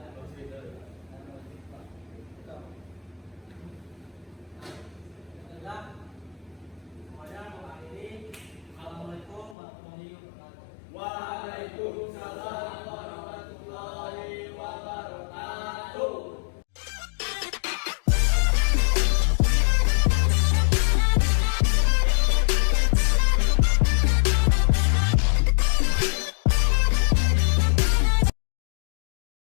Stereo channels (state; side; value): drops out; right; at 9.6 s